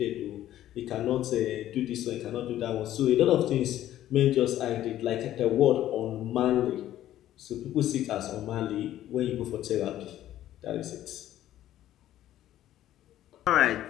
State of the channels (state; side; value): quieter; right; 12.9 dB